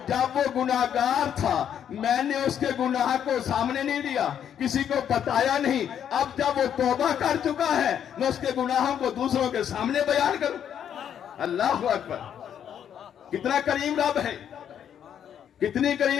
جب وہ گناہگار تھا میں نے اس کے گناہ کو سامنے نہیں دیا، کسی کو بتایا نہیں. اب جب وہ توبہ کر چکا ہے میں اس کے گناہوں کو دوسروں کے سامنے بیان کروں. اللہ اکبر. کتنا کریم رب ہے، کتنی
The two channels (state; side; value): quieter; right; 9.1 dB